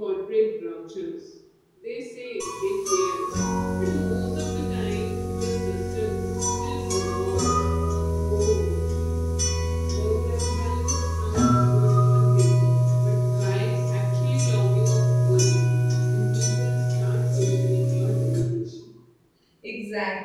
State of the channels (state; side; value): identical; both; correlation 1.00